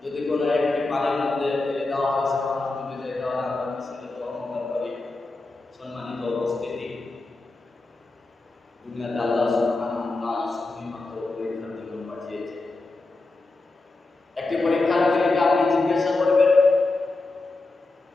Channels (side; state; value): right; quieter; 3.3 dB